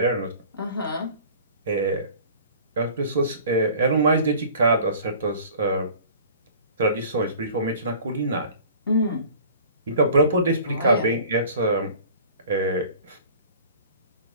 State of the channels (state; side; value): inverted; both; correlation -0.46